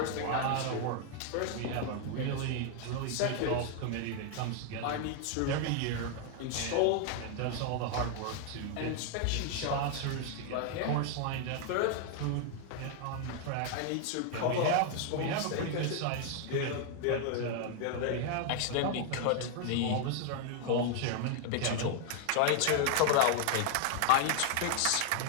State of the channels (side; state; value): both; different; correlation 0.00